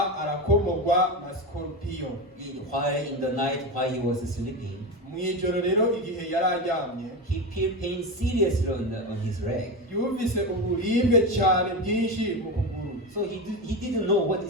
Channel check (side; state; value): both; normal; correlation 0.19